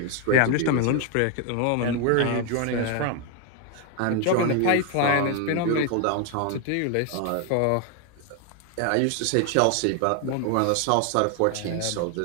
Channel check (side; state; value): both; different; correlation 0.01